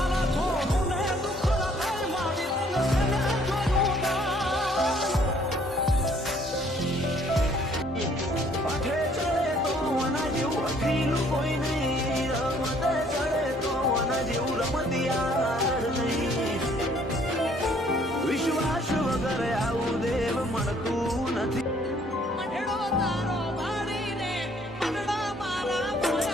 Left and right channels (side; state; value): both; normal; correlation 0.62